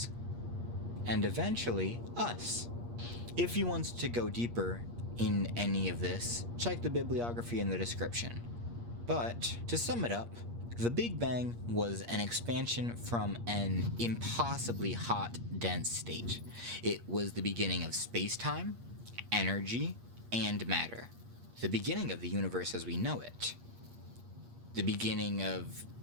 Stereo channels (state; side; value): late; left; 8.5 ms